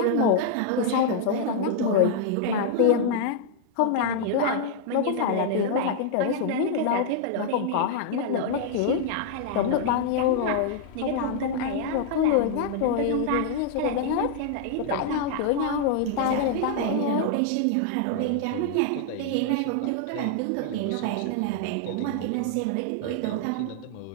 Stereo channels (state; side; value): different; both; correlation -0.01